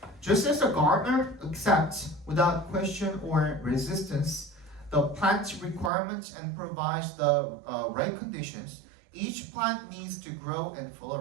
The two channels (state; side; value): drops out; left; at 5.9 s